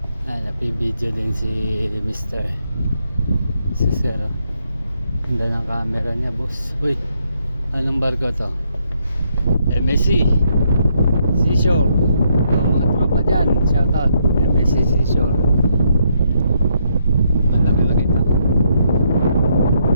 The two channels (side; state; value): both; inverted; correlation -0.75